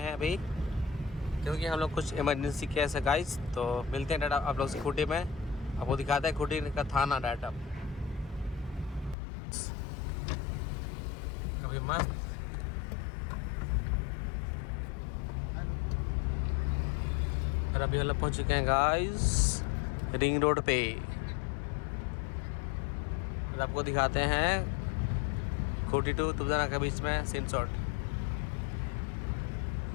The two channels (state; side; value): drops out; right; at 9.2 s